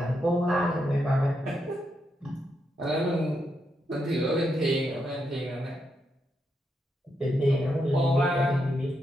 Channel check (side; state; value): both; normal; correlation 0.82